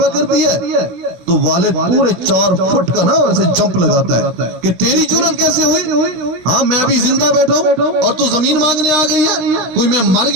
کرتی ہے تو والد پورے 4 فٹ کا نا ایسے جمپ لگاتا ہے کہ تیری جرأت کیسے ہوئی؟ ہاں میں ابھی زندہ بیٹھا ہوں اور تو زمین مانگنے آ گئی ہے، کوئی میں مر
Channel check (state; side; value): late; left; 16 ms